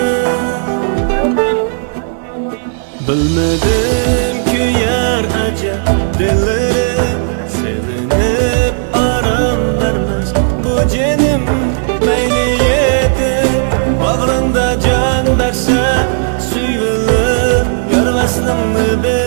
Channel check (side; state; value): left; silent; digital silence